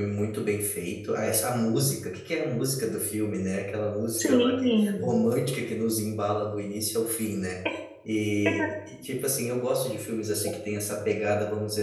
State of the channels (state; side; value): identical; both; correlation 1.00